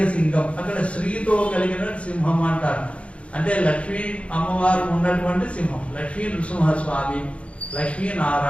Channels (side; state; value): right; late; 0.062 ms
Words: సింగం అక్కడ స్త్రీతో కలిగిన సింహం అంటారు. అంటే లక్ష్మీ అమ్మవారు ఉన్నటువంటి సింహం, లక్ష్మీ నృసింహస్వామి, లక్ష్మీ